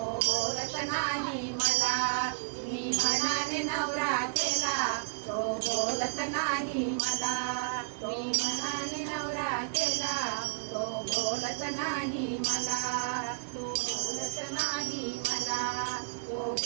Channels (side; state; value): left; silent; 57 dB below the other